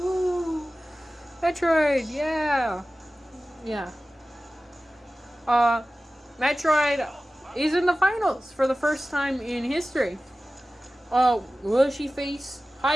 Metroid, yeah. Yeah. Metroid is in the finals for the first time in history. Will she face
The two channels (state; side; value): normal; both; correlation 0.96